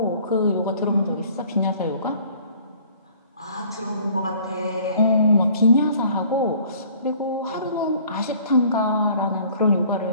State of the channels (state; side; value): inverted; both; correlation -0.54